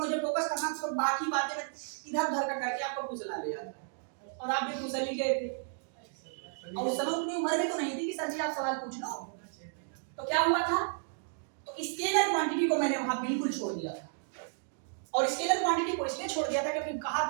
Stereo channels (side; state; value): left; silent; digital silence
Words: फोकस करना था, तो बाकी बातें मैं इधर उधर का करके आपको फुसला लिया था, और आप भी फुसल ही गए थे, और उस समय उतनी उम्र में तो नहीं थी कि सर जी आप सवाल पूछ लो। तो क्या हुआ था, तो स्केलर क्वांटिटी को मैंने वहां बिल्कुल छोड़ दिया था, और स्केलर क्वांटिटी को इसलिए छोड़ दिया था क्योंकि कहा